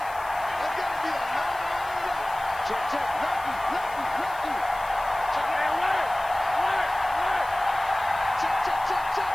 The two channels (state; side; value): noise; left; hiss, 20 dB below the sound